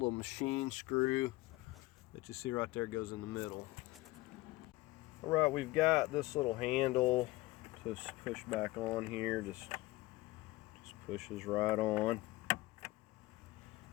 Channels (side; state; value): right; quieter; 19.7 dB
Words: machine screw that you see right there goes in the middle. All right, we've got this little handle to push back on here. Just pushes right on.